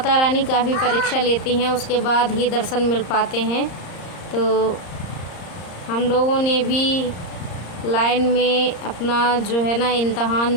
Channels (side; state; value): right; late; 34 ms